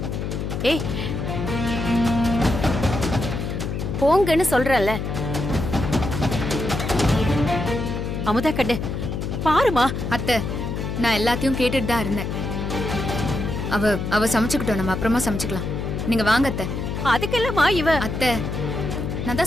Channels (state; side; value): noise; left; hum, 3 dB below the sound